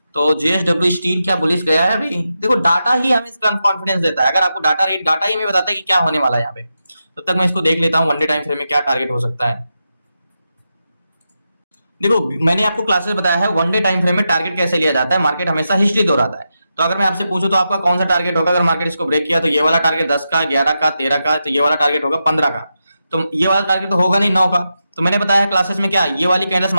तो जेएसडब्ल्यू स्टील क्या बुलिश गया है अभी, देखो डाटा ही हमें इसका कॉन्फिडेंस देता है। अगर आपको डाटा ही हमें बताता है कि क्या होने वाला है यहाँ पे, तब तक मैं इसको देख लेता हूँ वन डे टाइम फ्रेम में क्या टारगेट हो सकता है। देखो मैंने आपको क्लासेस बताया है वन डे टाइम फ्रेम में टारगेट कैसे लिया जाता है, मार्केट हमेशा हिस्ट्री दोहराता है। तो अगर मैं आपसे पूछूं तो आपका कौन सा टारगेट होगा, अगर मार्केट इसको ब्रेक किया तो ये वाला टारगेट 10 का, 11 का, 13 का, तो ये वाला टारगेट होगा 15 का। तो ये वाला टारगेट तो होगा नहीं 9 का। तो मैंने बताया है क्लासेस में क्या, ये वाली कैंडल्स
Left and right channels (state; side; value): inverted; both; correlation -0.88